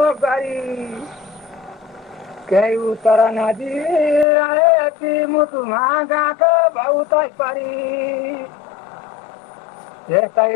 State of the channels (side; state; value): right; drops out; at 4.2 s